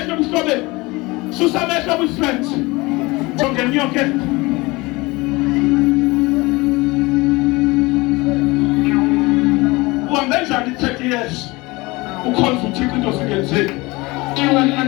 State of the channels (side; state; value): right; quieter; 23.0 dB